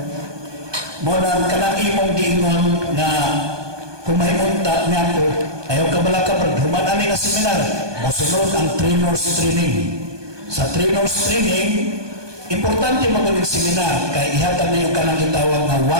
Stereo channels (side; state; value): left; late; 1.2 ms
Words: Muna, kanang imong giingon na kung may unta niya ko, ayaw ka bala ka, human ani nga seminar, masunod ang trainers training. Sa trainers training, importante magaling seminar, kaya ihatag na yung kanang itawag na